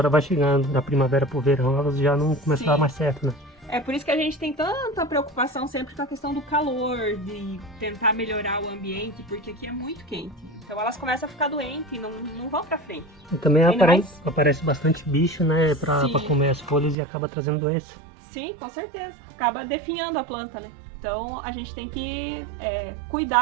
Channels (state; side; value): drops out; left; at 16.9 s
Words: vai chegando, da primavera para o verão, elas já não começam a dar mais certo, né? É por isso que a gente tem tanta preocupação sempre com a questão do calor, de tentar melhorar o ambiente, porque aqui é muito quente. Então elas começam a ficar doentes e não vão pra frente. E também aparece bastante bicho, né, pra comer as folhas e acaba trazendo doença. Sim, com certeza. Acaba definhando a planta, né? Então a gente tem que